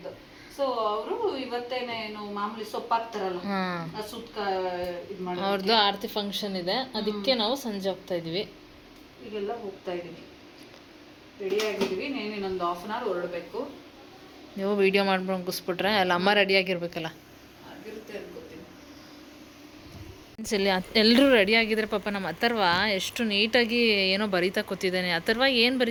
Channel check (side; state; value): both; identical; correlation 1.00